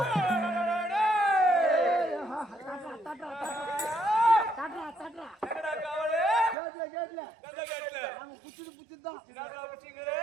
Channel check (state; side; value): drops out; left; at 6.6 s